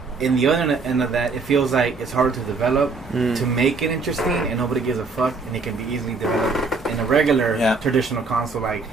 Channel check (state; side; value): quieter; left; 4.1 dB